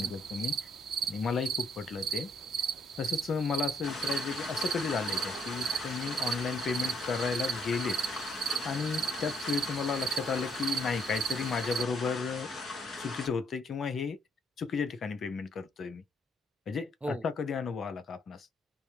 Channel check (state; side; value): normal; both; correlation 0.70